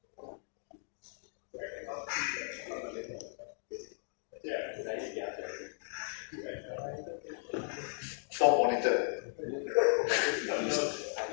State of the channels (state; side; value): silent; right; 54 dB below the other